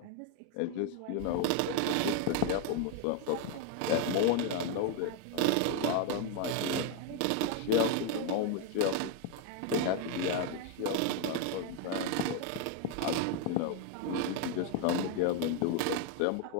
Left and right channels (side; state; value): both; different; correlation 0.01